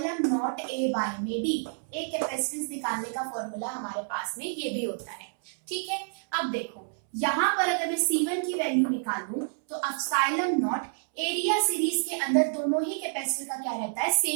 नॉट A बाय में D। एक कैपेसिटेंस निकालने का फॉर्मूला हमारे पास में ये भी होता है। ठीक है, अब देखो यहाँ पर अगर मैं C1 की वैल्यू निकालूं तो एप्सिलॉन नॉट, एरिया सीरीज के अंदर दोनों ही कैपेसिटर का क्या रहता है,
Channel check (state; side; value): silent; left; 59 dB below the other